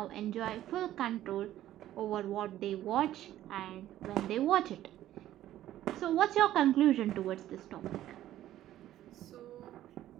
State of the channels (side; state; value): left; quieter; 13.2 dB